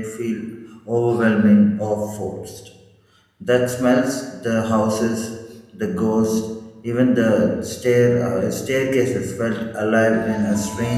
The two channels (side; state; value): both; identical; correlation 1.00